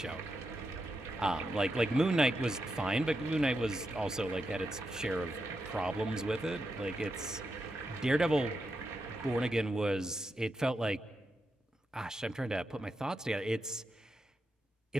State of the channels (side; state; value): both; normal; correlation 0.86